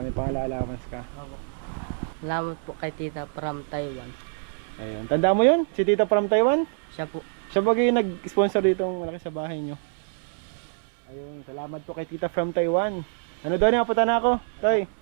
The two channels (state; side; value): silent; left; 61 dB below the other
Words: pang-allowance ka. Salamat po kay Tita from Taiwan. Ayun, tanda mo yun? Si Tita from Taiwan? Siya po. Siya ba yung nag-sponsor dito ng malaki sa bahay nyo? Ayun, salamat po kay Tita from Taiwan. Doon, napunta na ako. Toy.